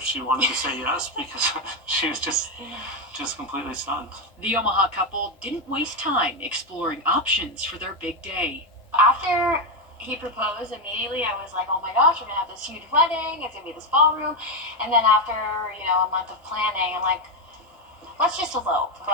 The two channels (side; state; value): both; normal; correlation 0.07